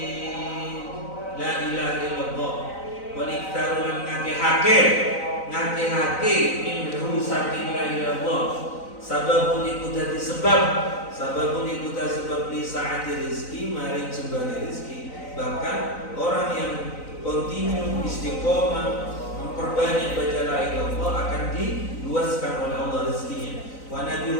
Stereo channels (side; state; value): right; late; 3.9 ms